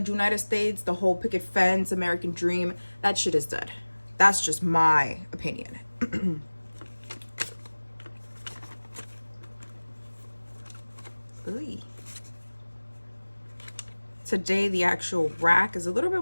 States, the whole picket fence, American dream, that shit is dead. That's just my opinion. Today the actual rack is a little bit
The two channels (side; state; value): both; inverted; correlation -1.00